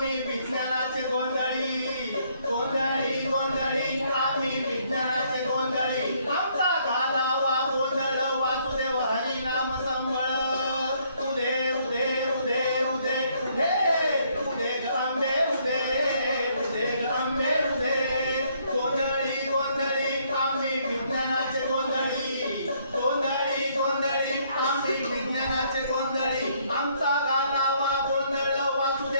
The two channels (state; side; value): inverted; both; correlation -0.68